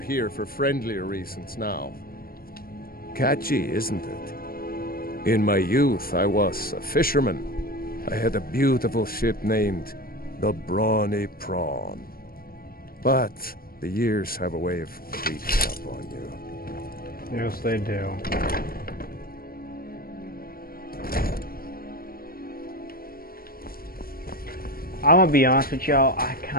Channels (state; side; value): late; right; 0.43 ms